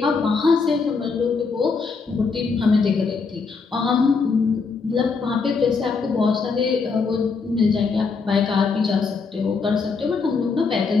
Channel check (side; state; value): right; quieter; 4.8 dB